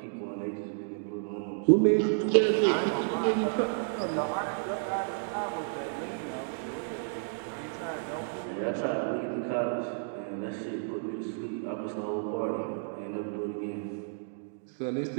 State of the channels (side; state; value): left; silent; digital silence